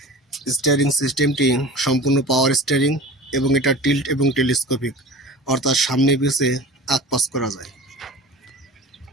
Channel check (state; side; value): normal; both; correlation 0.37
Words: স্টিয়ারিং সিস্টেমটি সম্পূর্ণ পাওয়ার স্টিয়ারিং এবং এটা টিল্ট এবং টেলিস্কোপিক, অর্থাৎ সামনে পিছে আগ-পাশ করা যায়।